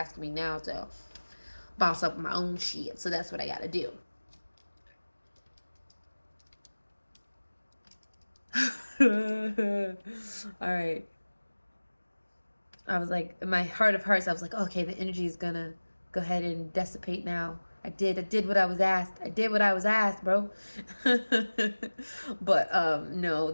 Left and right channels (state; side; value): inverted; both; correlation -1.00